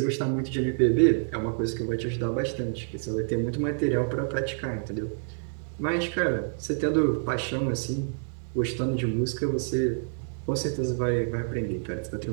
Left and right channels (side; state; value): left; silent; 59 dB below the other